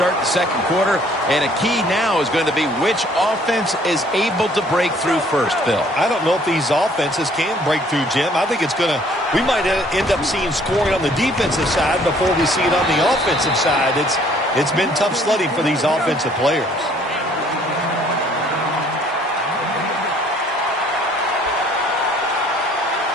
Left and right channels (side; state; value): both; normal; correlation 0.59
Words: the second quarter, and a key now is going to be which offense is able to break through first, Phil. I don't know if these offenses can break through, Jim. I think we might end up seeing scoring on the defensive side before we see it on the offensive side. It's been tough sledding for these offensive players.